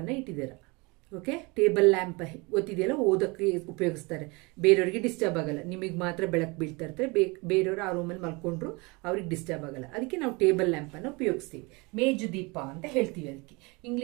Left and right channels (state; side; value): quieter; left; 27.0 dB